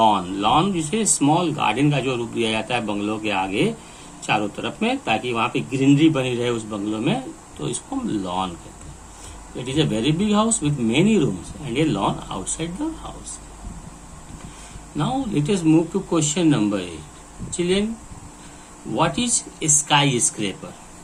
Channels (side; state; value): both; identical; correlation 1.00